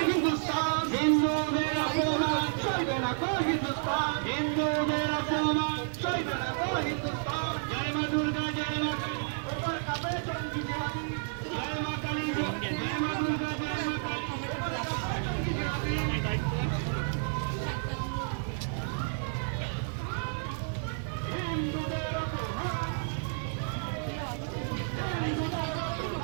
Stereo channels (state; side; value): silent; left; 57 dB below the other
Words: হিন্দুদের অপমান সইবে না কো হিন্দুস্তান। হিন্দুদের অপমান সইবে না কো হিন্দুস্তান। জয় মা দুর্গা, জয় মা কালী, ওপর কাঁপে জঙ্গি জিহাদি। জয় মা কালী, জয় মা দুর্গা, জয় মা কালী। হিন্দুদের অপমান। হিন্দুদের